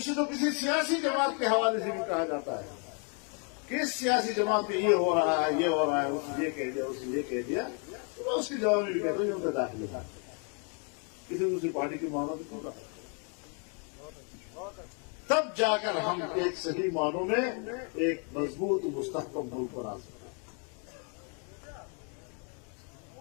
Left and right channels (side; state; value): right; quieter; 39.2 dB